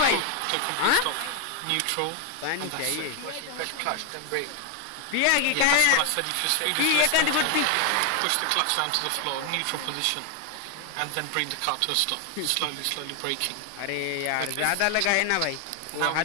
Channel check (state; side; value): different; both; correlation 0.01